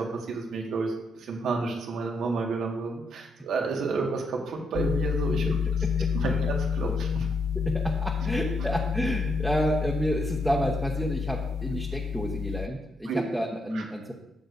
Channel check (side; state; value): both; normal; correlation 0.77